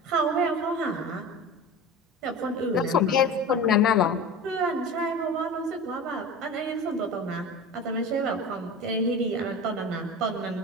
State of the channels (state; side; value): normal; both; correlation 0.32